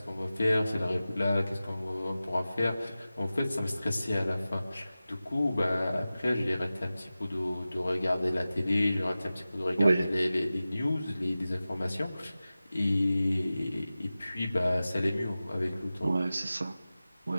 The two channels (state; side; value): inverted; both; correlation -0.96